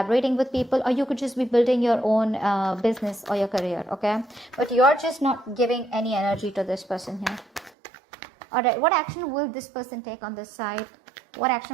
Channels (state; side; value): drops out; left; at 7.7 s